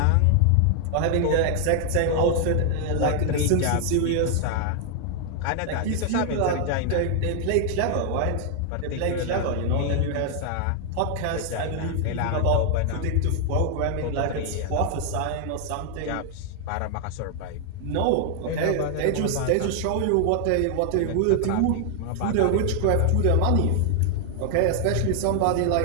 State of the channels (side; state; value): both; different; correlation 0.00